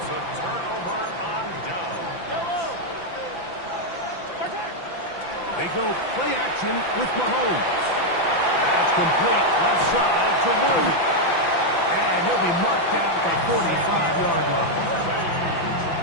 a turnover on down. They go play action with Mahomes. That's complete left side to Worthy. And he'll be marked down at the 45-yard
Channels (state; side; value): late; right; 5.9 ms